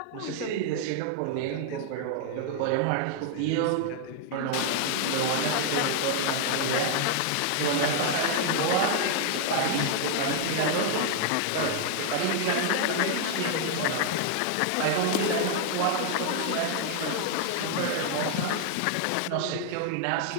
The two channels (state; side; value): different; both; correlation 0.00